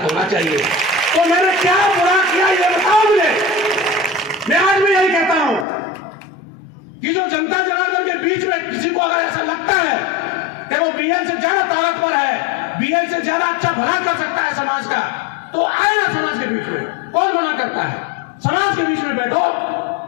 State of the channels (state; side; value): drops out; right; at 5.7 s